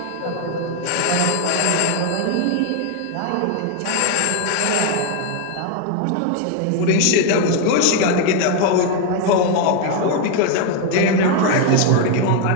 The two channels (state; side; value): different; both; correlation 0.01